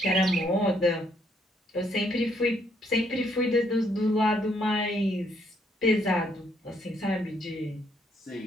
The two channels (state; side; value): normal; both; correlation 0.71